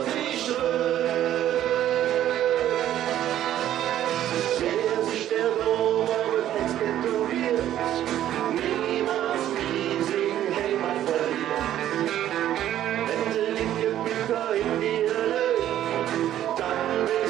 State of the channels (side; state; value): left; quieter; 12.0 dB